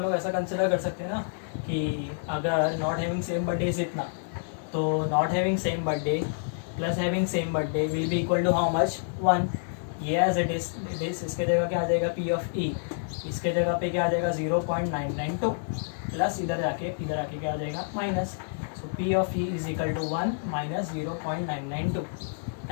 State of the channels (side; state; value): right; silent; digital silence